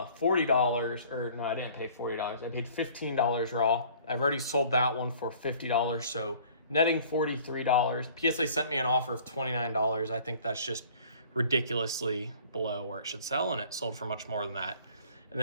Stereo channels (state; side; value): inverted; both; correlation -0.52